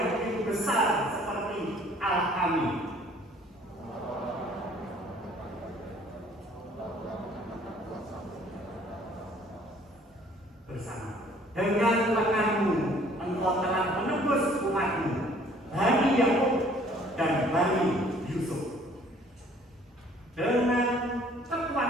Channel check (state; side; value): normal; both; correlation 0.57